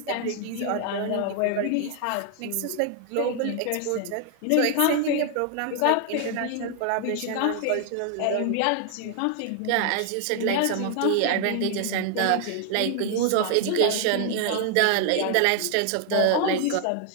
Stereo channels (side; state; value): both; different; correlation 0.00